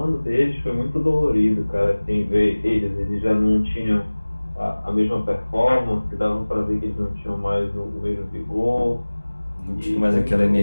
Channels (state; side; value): inverted; both; correlation -1.00